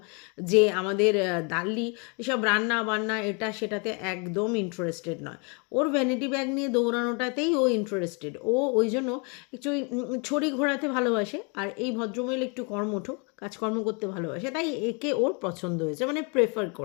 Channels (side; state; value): right; quieter; 34.1 dB